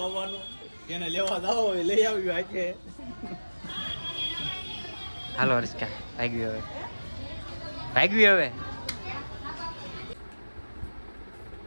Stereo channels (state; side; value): inverted; both; correlation -1.00